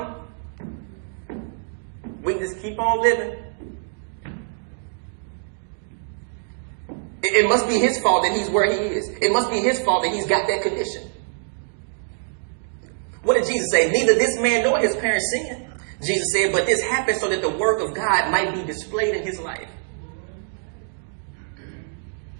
We can just keep on living. It must be his fault that he's where he is. It must be his fault that he's got that condition. What did Jesus say? Neither this man nor his parents sinned. Jesus said, but this happened so that the work of God might be displayed in his life.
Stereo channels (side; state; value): left; silent; digital silence